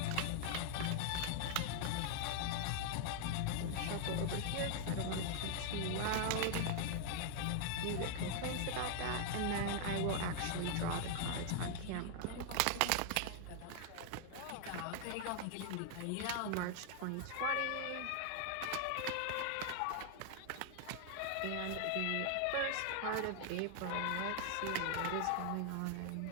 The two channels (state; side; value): different; both; correlation 0.00